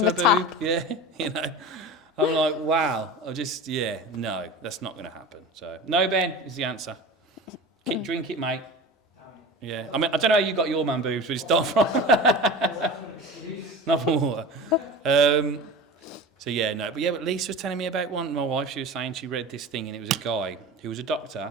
a the boob. tap. Yeah, I'm like, wow. No, that's not going to happen. So, no, Ben, is the answer. Drink it, mate. Yeah, I mean, I don't know how you got your man boobs, but it's not from... not from water. So, yeah, no. But Lisa was telling me about one. My wife, she was saying she read this thing and it was a guy who was a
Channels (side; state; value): both; normal; correlation 0.32